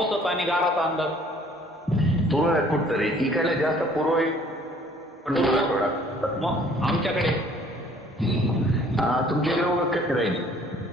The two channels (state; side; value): normal; both; correlation 0.57